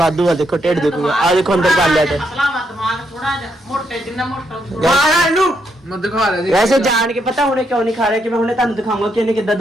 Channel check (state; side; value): normal; both; correlation 0.78